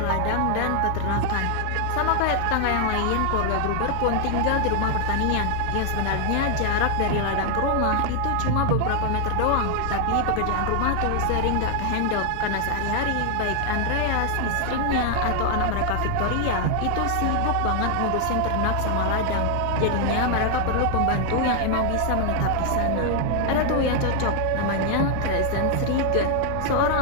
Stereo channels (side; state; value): both; different; correlation 0.00